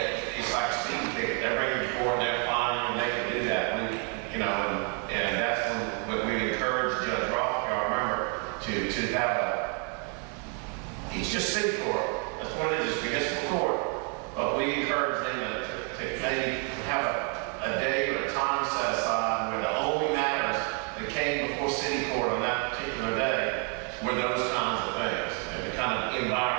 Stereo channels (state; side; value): quieter; left; 39.0 dB